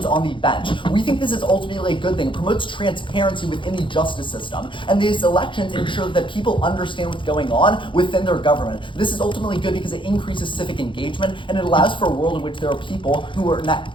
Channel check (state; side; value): late; right; 0.24 ms